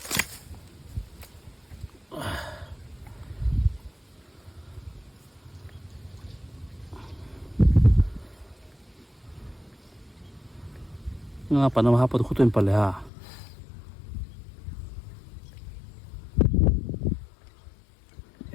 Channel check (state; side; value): drops out; right; at 13.1 s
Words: Ngapa nama apa tu kutu yang paling ha?